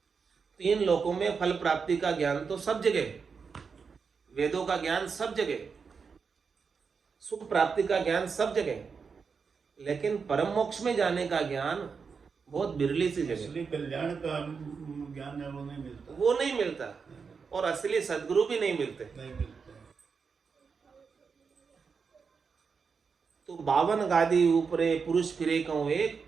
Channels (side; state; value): left; quieter; 5.5 dB